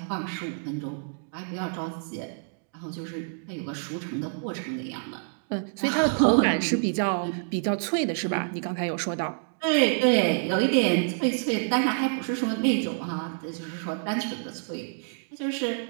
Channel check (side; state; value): left; silent; digital silence